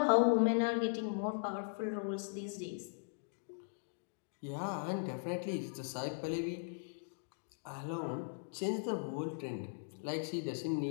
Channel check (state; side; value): silent; right; digital silence